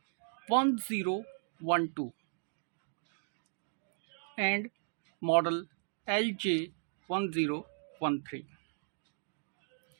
and model LJ1013.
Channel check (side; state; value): left; silent; digital silence